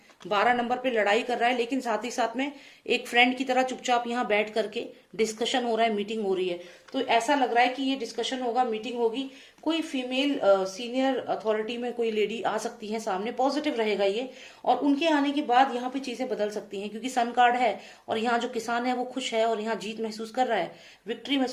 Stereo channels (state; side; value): identical; both; correlation 1.00